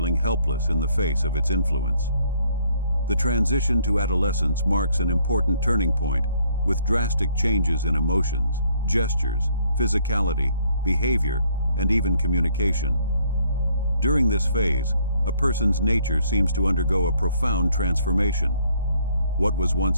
helpless in the face of its influence. The transition to adolescence marks an important turning point, with drastic changes in emotions, gestures, physicality, behavior, and even communication. During this phase, a person's nature seems to undergo a profound transformation. What was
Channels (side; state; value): both; inverted; correlation -0.66